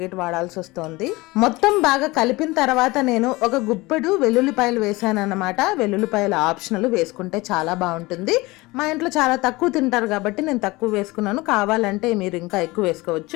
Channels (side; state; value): right; quieter; 21.8 dB